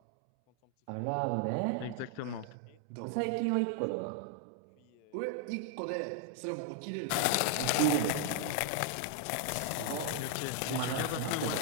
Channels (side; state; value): both; different; correlation 0.00